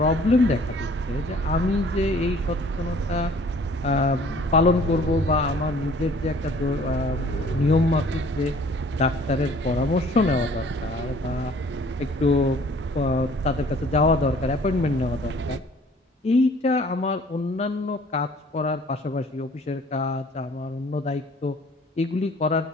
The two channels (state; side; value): normal; both; correlation 0.54